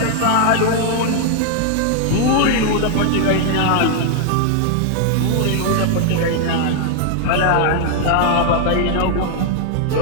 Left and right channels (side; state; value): both; different; correlation 0.00